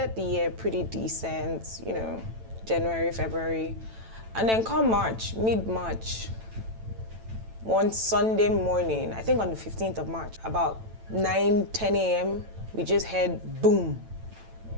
the year pretty decent, January, February. And then come March, mid-March, one Sunday morning, I think on the 15th of March, about 9, 10 a.m., we just heard boom.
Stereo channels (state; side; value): late; left; 9.0 ms